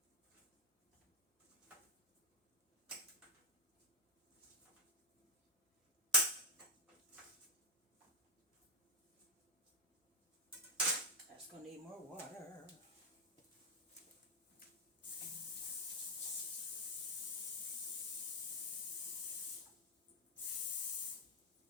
That's gonna need more water.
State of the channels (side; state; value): both; normal; correlation 0.02